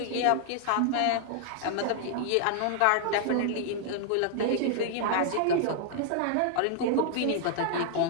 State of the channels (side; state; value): both; different; correlation -0.01